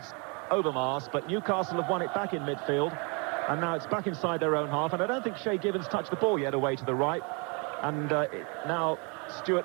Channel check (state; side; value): quieter; left; 32.8 dB